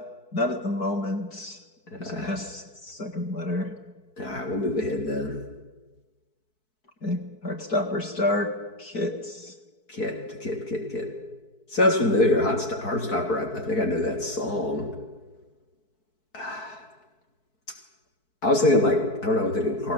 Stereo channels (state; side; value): late; right; 4.6 ms